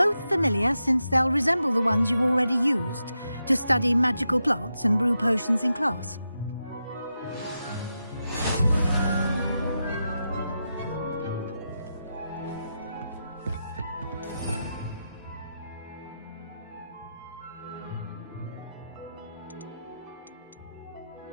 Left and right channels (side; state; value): both; inverted; correlation -0.88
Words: familiar, since they'll resemble the ones you've already used to study magical plants and brew potions in class.